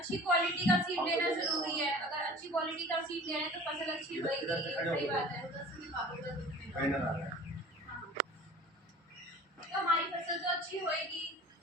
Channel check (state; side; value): normal; both; correlation 0.44